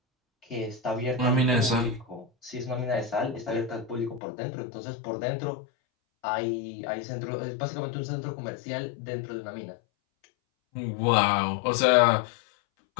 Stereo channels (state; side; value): drops out; right; at 4.2 s